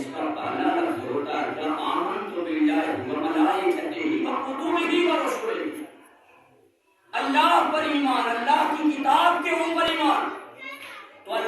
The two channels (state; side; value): identical; both; correlation 1.00